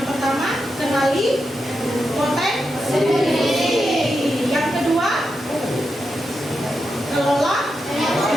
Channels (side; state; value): both; normal; correlation 0.87